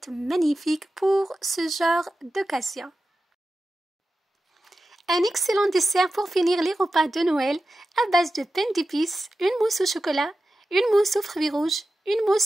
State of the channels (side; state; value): both; normal; correlation 0.93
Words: magnifique pour ce genre d'occasion. Un excellent dessert pour finir les repas de Noël à base de pain d'épices, une mousse au chocolat, une mousse aux fruits rouges, une